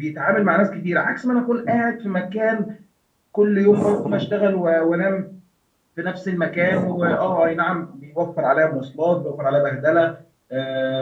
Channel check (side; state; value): both; identical; correlation 1.00